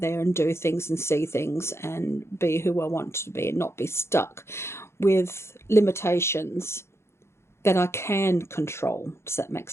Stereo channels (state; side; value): late; right; 0.13 ms